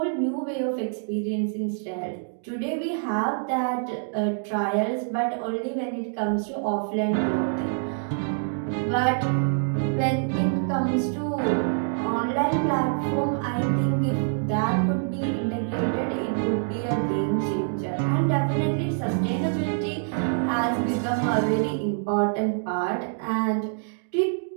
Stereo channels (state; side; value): silent; left; digital silence